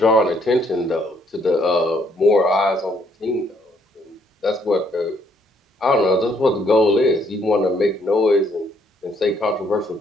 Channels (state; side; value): normal; both; correlation 0.69